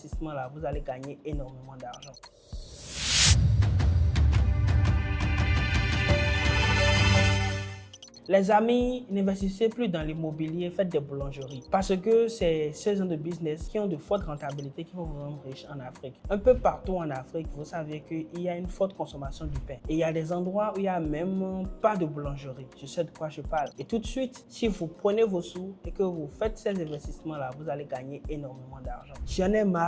vous allez gagner énormément d'argent. Les amis, n'investissez plus dans l'immobilier, faites des boulangeries. Parce que c'est ce genre de business qui ont de fortes rentabilités qui vont vous rendre riche en Afrique. Un peu partout en Afrique, vous savez qu'il y a une forte consommation du pain. Et il y a des endroits où il n'y a même pas de boulangerie. Je sais de quoi je parle. Et tout de suite, si vous prenez vos sous et que vous faites ces investissements-là, vous allez gagner énormément d'argent. J'en ai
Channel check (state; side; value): identical; both; correlation 1.00